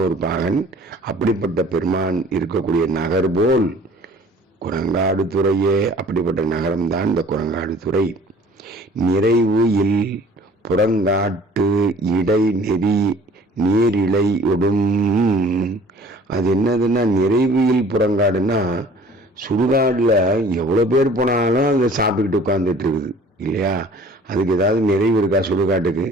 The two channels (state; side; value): normal; both; correlation 0.50